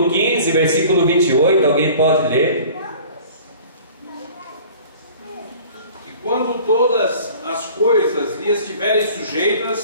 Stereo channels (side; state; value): both; inverted; correlation -0.47